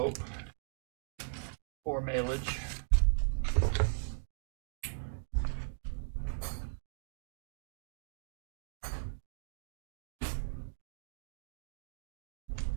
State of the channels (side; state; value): left; silent; digital silence